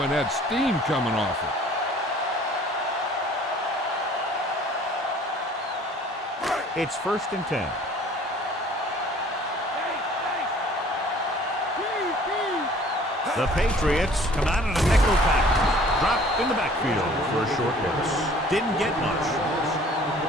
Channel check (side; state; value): both; normal; correlation 0.52